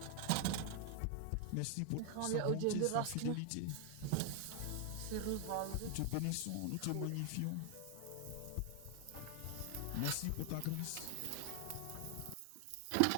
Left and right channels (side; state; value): both; different; correlation 0.00